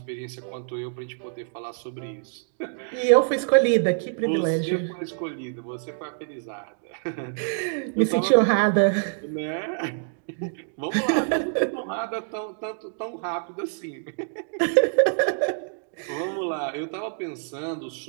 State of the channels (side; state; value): left; silent; digital silence